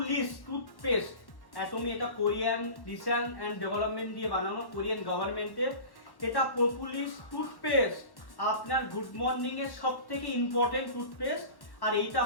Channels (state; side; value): late; right; 1.1 ms